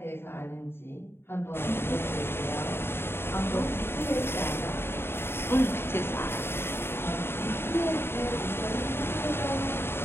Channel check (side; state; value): right; late; 0.11 ms